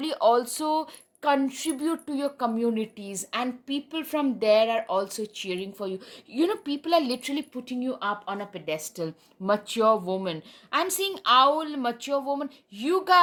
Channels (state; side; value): identical; both; correlation 1.00